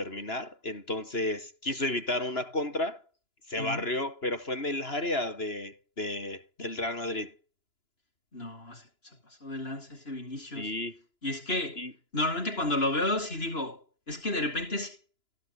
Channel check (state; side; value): late; right; 2.9 ms